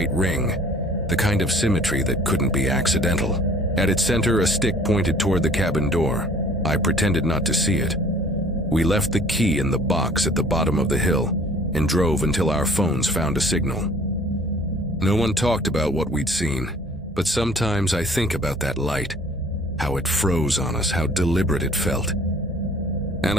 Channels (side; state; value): both; normal; correlation 0.52